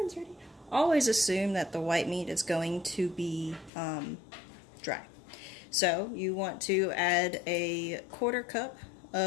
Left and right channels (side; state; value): right; drops out; at 3.7 s